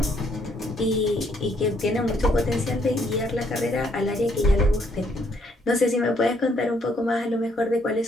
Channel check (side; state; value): both; normal; correlation 0.70